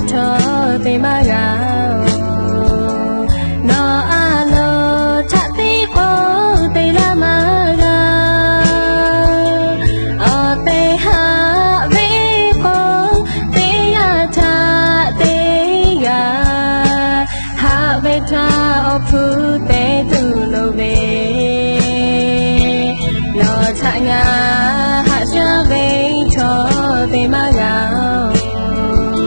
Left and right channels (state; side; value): inverted; both; correlation -1.00